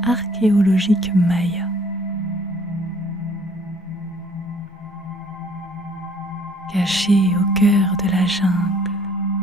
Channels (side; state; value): both; normal; correlation 0.59